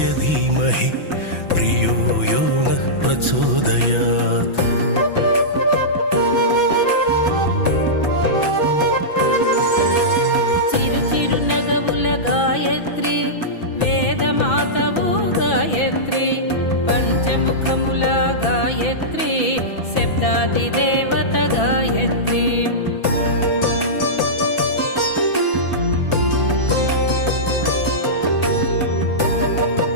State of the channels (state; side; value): late; right; 6.0 ms